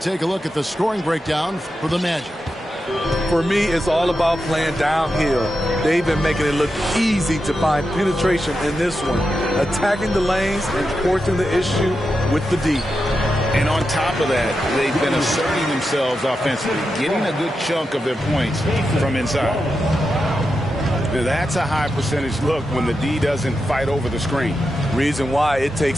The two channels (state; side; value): normal; both; correlation 0.88